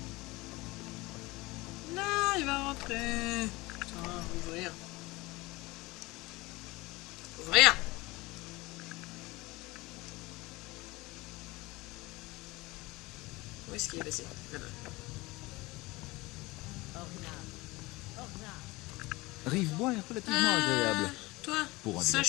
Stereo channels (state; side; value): quieter; right; 21.8 dB